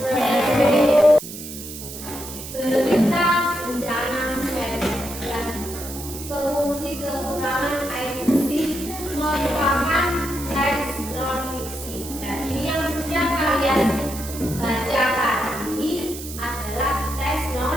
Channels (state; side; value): noise; right; hiss, 11 dB below the sound